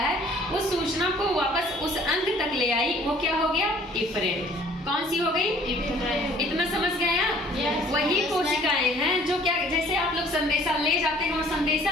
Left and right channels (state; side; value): normal; both; correlation 0.55